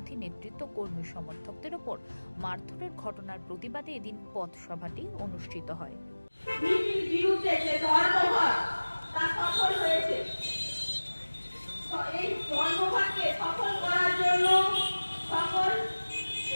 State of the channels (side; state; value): both; inverted; correlation -1.00